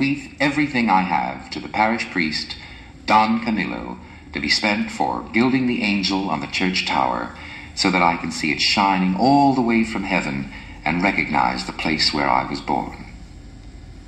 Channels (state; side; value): identical; both; correlation 1.00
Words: everything I have to the parish priest, Don Camillo, to be spent for gilding the angel on the church tower, so that I can see it shining all the way from heaven and recognize the place where I was born."